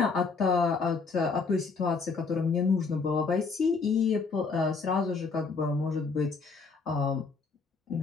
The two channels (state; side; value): quieter; right; 4.6 dB